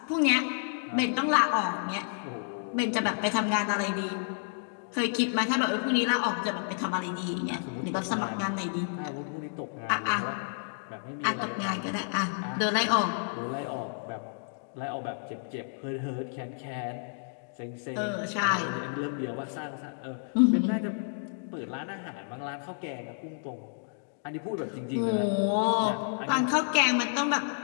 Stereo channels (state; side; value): silent; right; digital silence